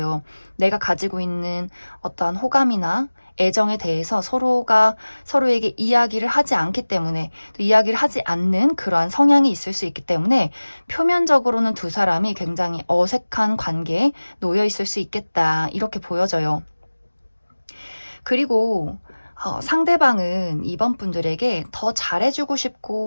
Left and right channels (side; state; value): both; inverted; correlation -1.00